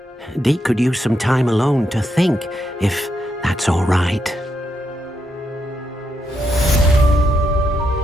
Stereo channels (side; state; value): both; normal; correlation 0.81